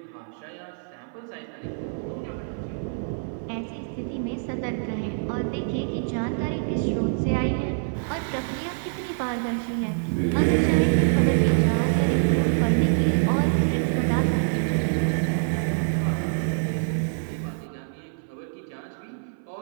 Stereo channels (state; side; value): silent; left; 57 dB below the other